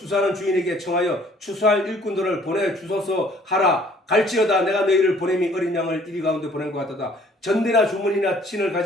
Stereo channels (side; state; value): both; normal; correlation 0.58